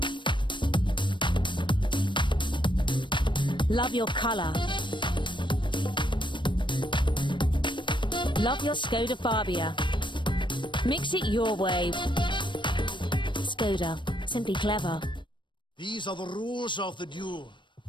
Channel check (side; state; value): right; late; 0.23 ms